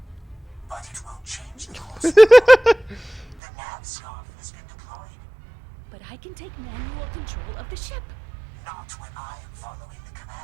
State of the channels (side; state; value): left; drops out; at 3.4 s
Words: but it won't change the course of the nav scarf has been deployed. But I can take manual control of the ship. Not when I am following the